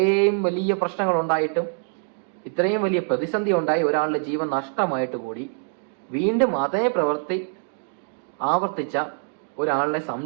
വലിയ പ്രശ്നങ്ങൾ ഉണ്ടായിട്ടും, ഇത്രയും വലിയ പ്രതിസന്ധി ഉണ്ടായി, ഒരാളുടെ ജീവൻ നഷ്ടമായിട്ട് കൂടി വീണ്ടും അതേ പ്രവൃത്തി ആവർത്തിച്ച ഒരാളെ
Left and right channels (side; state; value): left; silent; 57 dB below the other